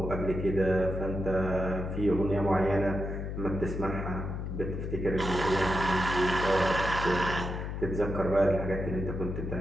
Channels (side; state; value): left; noise; hum, 5 dB below the sound